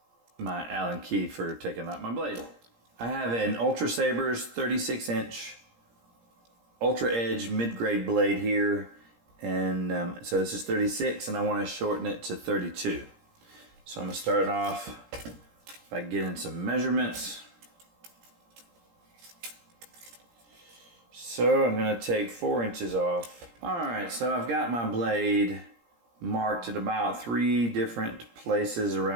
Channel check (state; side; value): late; left; 17 ms